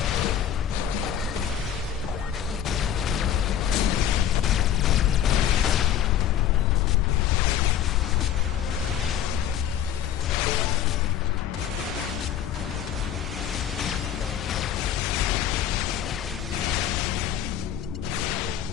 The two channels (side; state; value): right; quieter; 9.8 dB